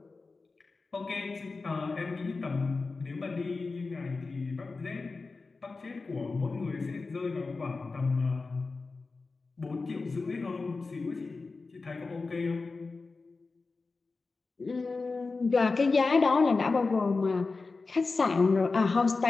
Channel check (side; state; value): right; quieter; 4.0 dB